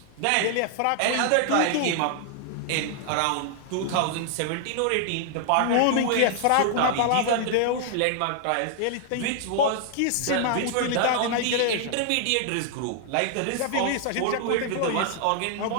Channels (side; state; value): both; different; correlation 0.00